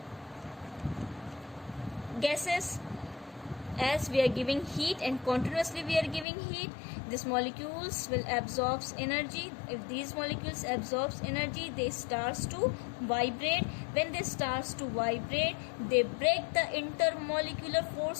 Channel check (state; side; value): drops out; right; at 6.2 s